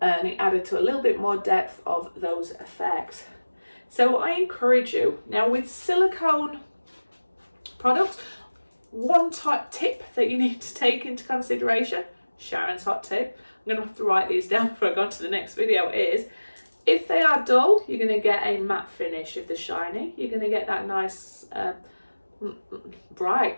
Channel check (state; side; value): inverted; both; correlation -1.00